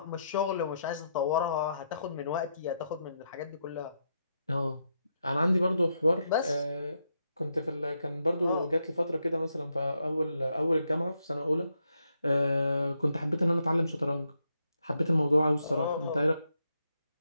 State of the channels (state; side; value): inverted; both; correlation -0.80